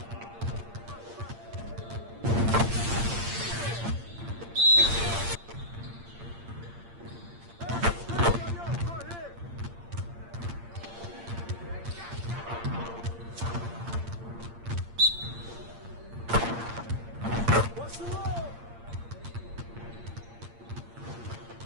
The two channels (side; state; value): left; late; 8.7 ms